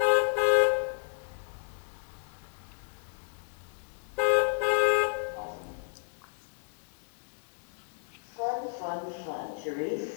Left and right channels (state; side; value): silent; right; digital silence